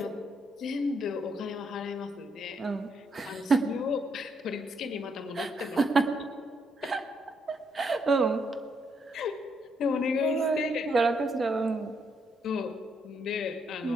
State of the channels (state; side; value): normal; both; correlation 0.75